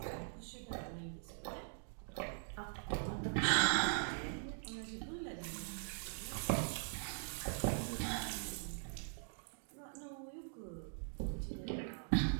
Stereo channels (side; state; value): left; silent; digital silence